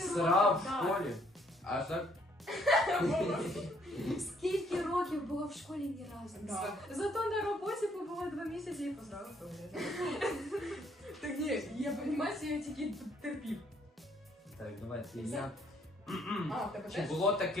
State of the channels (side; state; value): both; normal; correlation 0.67